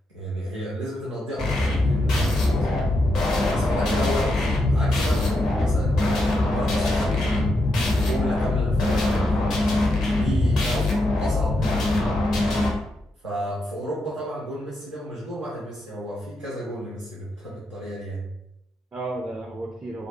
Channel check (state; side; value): normal; both; correlation 0.82